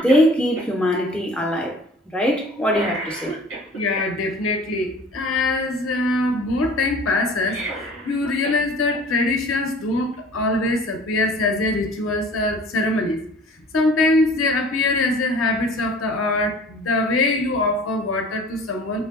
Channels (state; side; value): normal; both; correlation 0.46